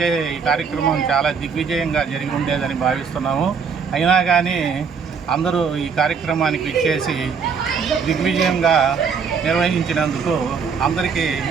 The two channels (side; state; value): left; quieter; 6.0 dB